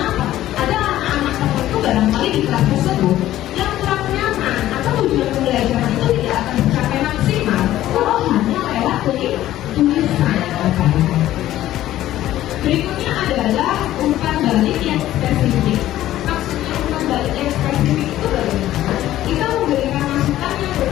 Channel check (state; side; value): quieter; right; 13.8 dB